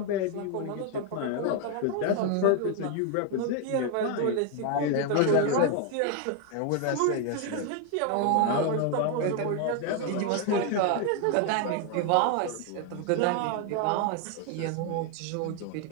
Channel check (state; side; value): different; both; correlation 0.01